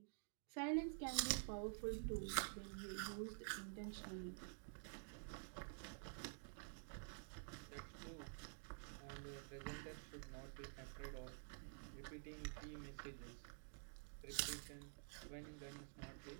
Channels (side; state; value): left; silent; digital silence